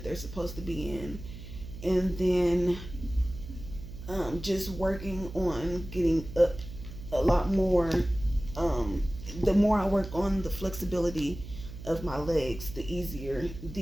they're supposed to be in. And then just working on getting up a lot more. The more I work on the flexibility of my legs, the easier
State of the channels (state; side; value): noise; right; hum, 12 dB below the sound